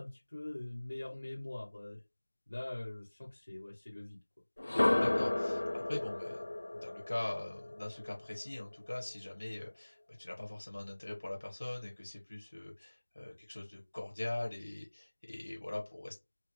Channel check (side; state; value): both; inverted; correlation -1.00